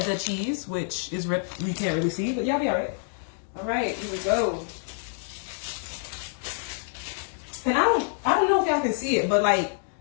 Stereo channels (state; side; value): silent; right; digital silence